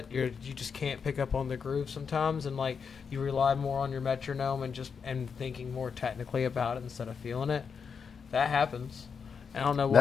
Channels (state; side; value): quieter; right; 6.1 dB